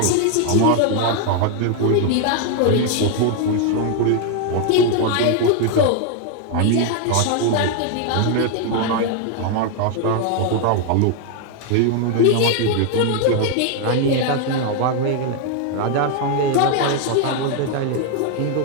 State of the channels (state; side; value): different; both; correlation 0.00